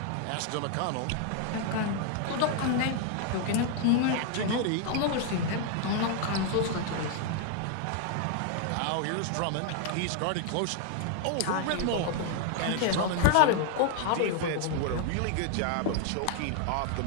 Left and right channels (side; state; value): both; different; correlation 0.00